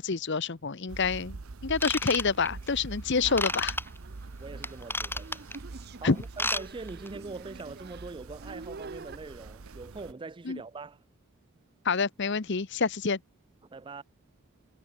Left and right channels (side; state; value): right; quieter; 3.5 dB